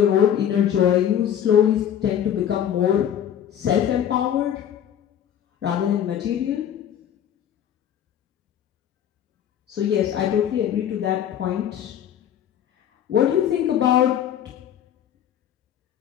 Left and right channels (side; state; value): right; quieter; 9.9 dB